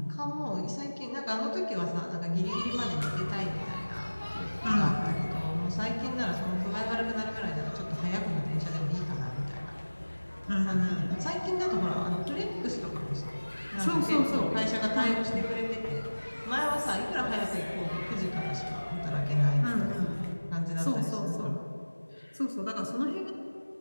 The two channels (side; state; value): both; inverted; correlation -1.00